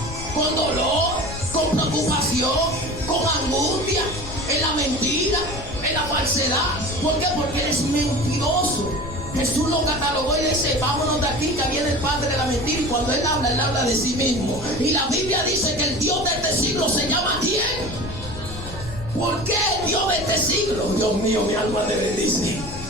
con dolor, con preocupación, con angustia, en la mentira, en la falsedad. ¿Por qué? Porque eres mentiroso. Jesús lo catalogó y dice, vámonos de aquí, que viene el padre de la mentira. Y cuando él habla de sí mismo. Y la Biblia dice que el Dios de este siglo se llama ¿quién? ¿Por qué el Dios de este siglo? Dios mío, mi alma te bendice.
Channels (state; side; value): noise; left; rumble, 11 dB below the sound